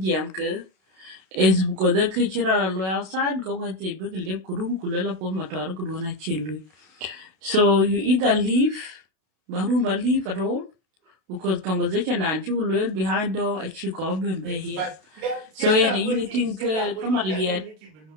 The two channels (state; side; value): late; left; 32 ms